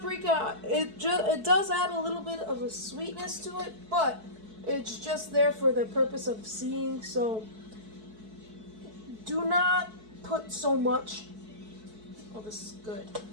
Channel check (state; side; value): late; left; 4.6 ms